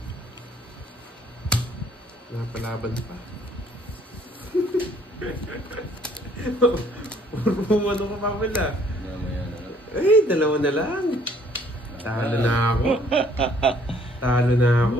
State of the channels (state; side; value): normal; both; correlation 0.61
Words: Napalaban pa. Umano ka pa pala. Mamaya na lang. Eh, dalawa na lang. Talo na ako. Talo na ako.